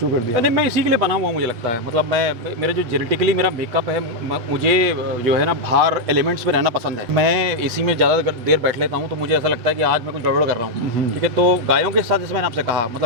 कर दिया? नहीं, मैं इसी के लिए बना हुआ, मुझे लगता है। मतलब मेरे जो जेनेटिकली मेरा मेकअप है, मुझे जो है ना बाहर एलिमेंट्स में रहना पसंद है। मैं एसी में ज़्यादा देर बैठ लेता हूँ तो मुझे ऐसा लगता है कि आज मैं कुछ गड़बड़ कर रहा हूँ, ठीक है। तो गायों के साथ जैसे मैंने आपसे कहा,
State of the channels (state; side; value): late; left; 8.2 ms